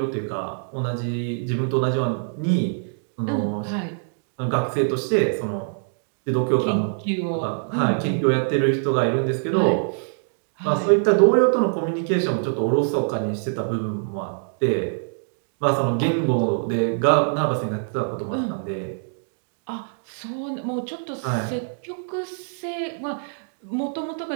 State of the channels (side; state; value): left; silent; digital silence